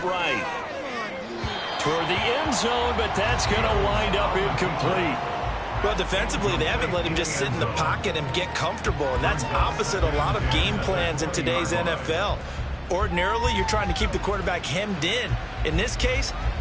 right. Toward the end zone, but that's going to wind up incomplete. Well, defensively, they haven't let him just sit in the pocket and get comfortable, and that's opposite a lot of game plans in today's NFL. Ordinarily, you're trying to keep the quarterback hemmed in. In this case,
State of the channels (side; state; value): both; identical; correlation 1.00